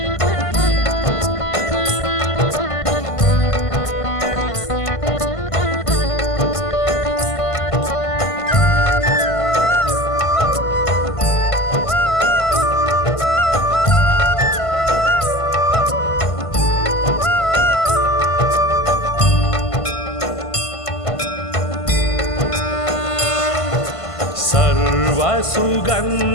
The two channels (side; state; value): right; late; 1.5 ms